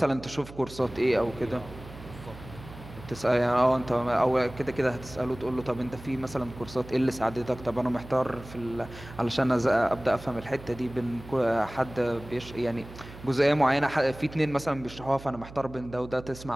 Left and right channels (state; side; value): noise; right; hum, 16 dB below the sound